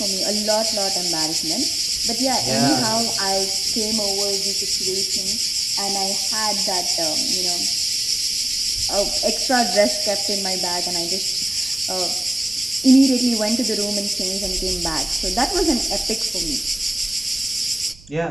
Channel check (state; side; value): noise; right; rumble, 24 dB below the sound